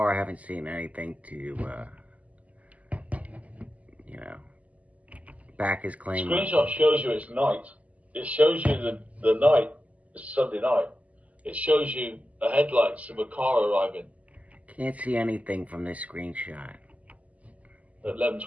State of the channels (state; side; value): late; left; 0.072 ms